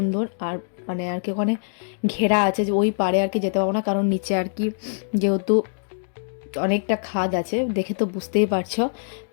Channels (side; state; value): right; silent; digital silence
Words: আর মানে আর কি ওখানে ঘেরা আছে, যে ওই পারে আর কি যেতে পারবো না, কারণ নিচে আর কি যেহেতু অনেকটা খাদ আছে, দেখে তো বুঝতেই পারছো।